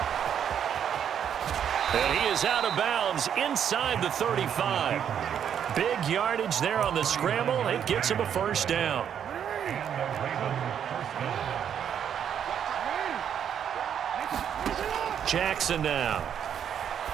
And he is out of bounds inside the 35. Big yardage there on the scramble. It gets him a first down. Jackson now.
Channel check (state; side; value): quieter; left; 8.7 dB